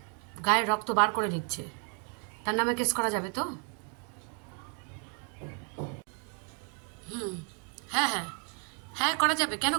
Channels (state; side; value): quieter; left; 39.7 dB